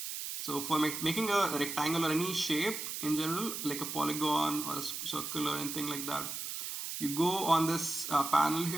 So for making a rectangle or any shape in general, like a polygon or a circle or anything like that, you go on this panel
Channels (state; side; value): noise; right; hiss, 5 dB below the sound